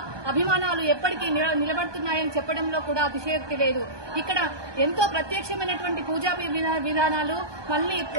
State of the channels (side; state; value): left; late; 1.2 ms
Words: అభిమానాలు ఎప్పటికీ నిలబడుతున్నాయని చెప్పడంలో కూడా అతిశయోక్తి లేదు. ఇక్కడ ఎంతో ప్రత్యక్షమైనటువంటి పూజా విధానాలు మళ్ళీ